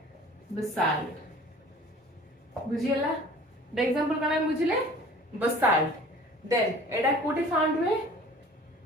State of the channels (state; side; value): normal; both; correlation 0.46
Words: बसाल्ट बुझियला द एग्जांपल कोन हम बुझिले बसाल्ट देन एटा कोठी फाउंड हुए